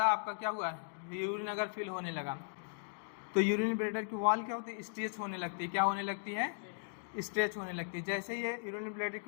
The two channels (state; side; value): silent; right; digital silence